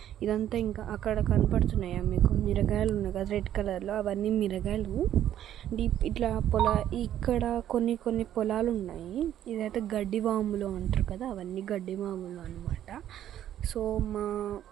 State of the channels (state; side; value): quieter; left; 11.3 dB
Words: ఇదంతా ఇంకా అక్కడ కనపడుతున్నాయా మీకు మిరగాయలు ఉన్నాయి కదా రెడ్ కలర్లో, అవన్నీ మిరగాయలు. డీప్ ఇట్లా ఇక్కడ కొన్ని పొలాలు ఉన్నాయి. ఇదైతే గడ్డి వాములు అంటారు కదా, అవన్నీ గడ్డి వాములు అనమాట. సో మా